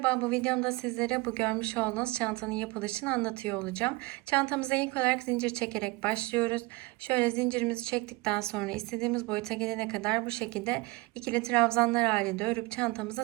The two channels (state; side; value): quieter; left; 23.0 dB